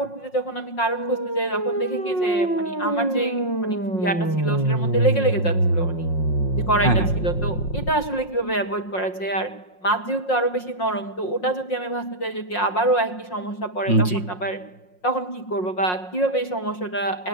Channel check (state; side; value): late; right; 5.5 ms